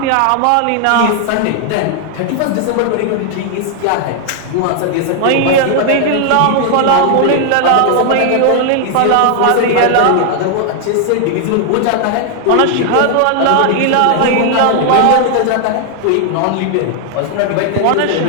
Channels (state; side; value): different; both; correlation 0.00